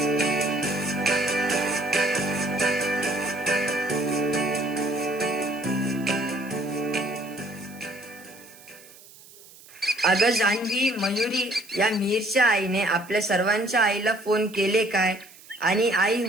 अगं जान्हवी, मयुरी, या मीरच्या आईने आपल्या सर्वांच्या आईला फोन केले काय आणि आई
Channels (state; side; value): noise; right; hiss, 22 dB below the sound